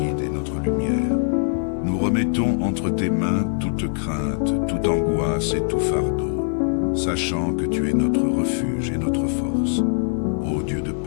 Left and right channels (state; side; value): silent; right; digital silence